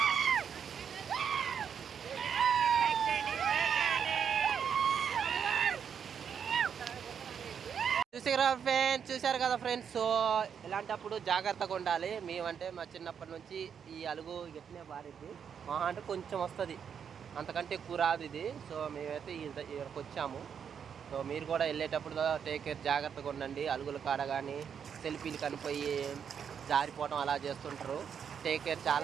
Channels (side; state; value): left; quieter; 7.5 dB